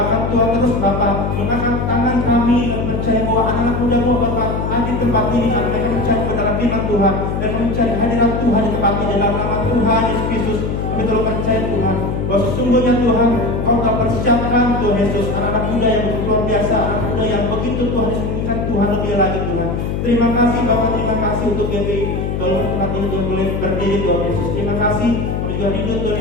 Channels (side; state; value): left; noise; hum, 2 dB below the sound